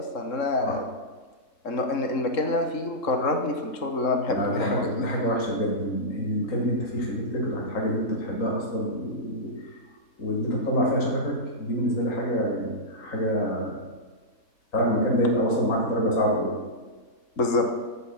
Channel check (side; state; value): right; late; 3.7 ms